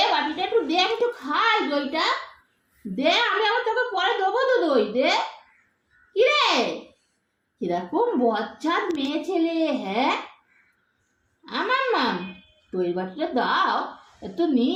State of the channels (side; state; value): both; identical; correlation 1.00